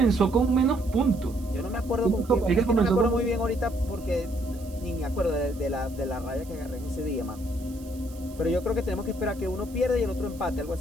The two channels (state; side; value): noise; right; hiss, 22 dB below the sound